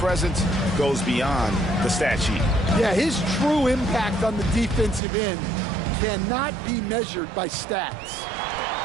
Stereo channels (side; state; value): left; drops out; at 5.0 s